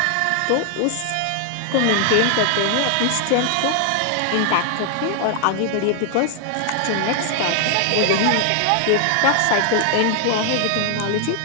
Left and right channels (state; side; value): different; both; correlation 0.00